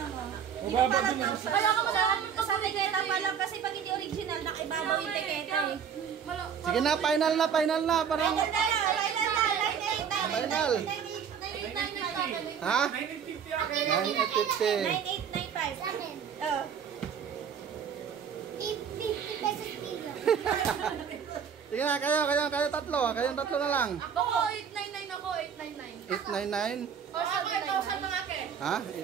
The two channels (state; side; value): quieter; left; 7.5 dB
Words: Mababa din ang Kaya ka malaman ko sa Tiketa pa lang kasi pag hindi original, nakibabaw yung tiketa eh. Sige na, final na. Parang, final. Ha? 950 akin. 9,850. 9,895. Sa akin. Oh. 50 pesos kilo. Sige na, kayo tatlo. Kayong tatlo na lang. Ako 899 ako. 899. 899. O sa 8,000 lang akin. Ha?